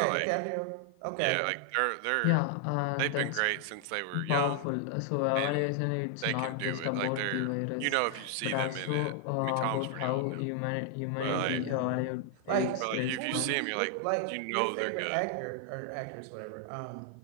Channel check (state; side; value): different; both; correlation 0.00